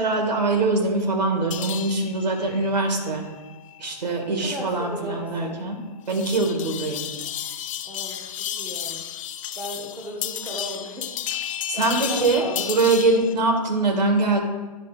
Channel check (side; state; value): both; normal; correlation -0.06